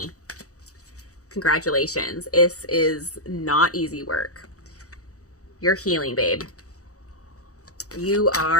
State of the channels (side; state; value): right; late; 0.66 ms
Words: Congratulations. This is not easy work. You're healing, babe. You